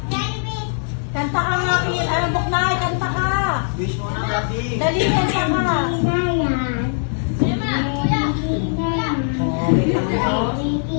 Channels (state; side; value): silent; right; 58 dB below the other